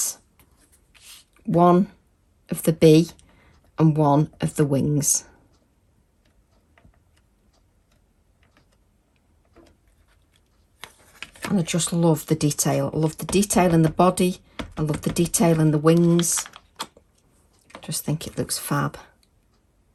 one of the bee and one of the wings. And I just love the detail. I love the detail in the body. I love the detail in the wings. I just think it looks fab.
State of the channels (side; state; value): both; identical; correlation 1.00